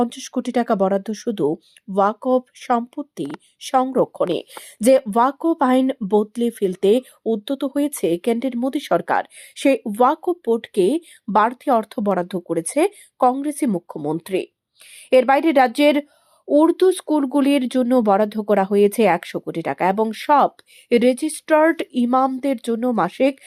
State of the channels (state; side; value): identical; both; correlation 1.00